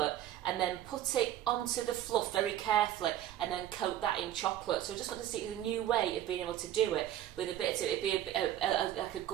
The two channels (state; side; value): quieter; left; 12.2 dB